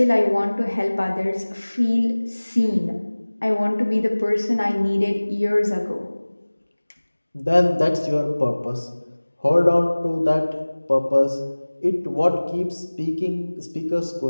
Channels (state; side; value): inverted; both; correlation -1.00